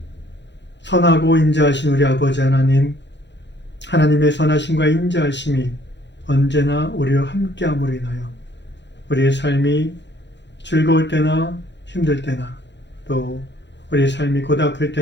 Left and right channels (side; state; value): right; late; 0.52 ms